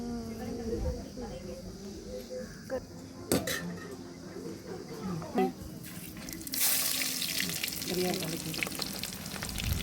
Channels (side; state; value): both; identical; correlation 1.00